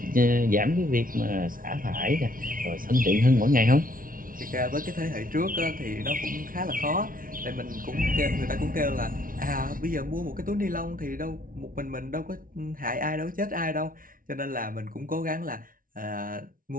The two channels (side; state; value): left; late; 0.40 ms